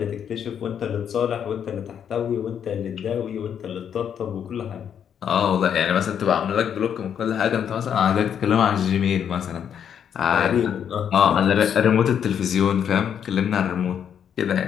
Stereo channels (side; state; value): right; quieter; 8.5 dB